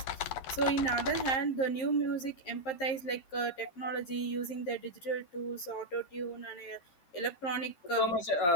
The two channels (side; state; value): right; late; 11 ms